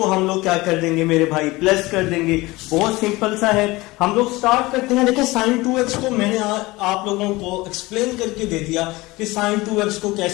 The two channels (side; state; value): right; quieter; 21.1 dB